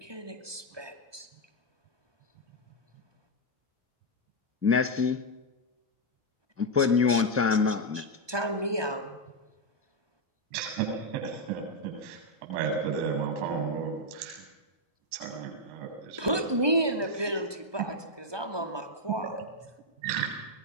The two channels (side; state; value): left; late; 1.2 ms